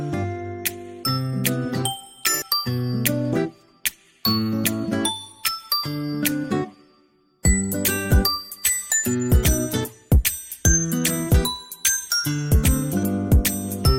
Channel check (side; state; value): both; identical; correlation 1.00